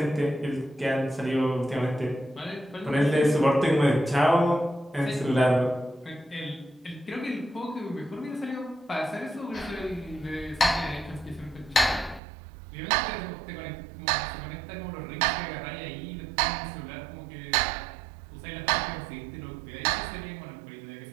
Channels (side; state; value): left; drops out; at 12.2 s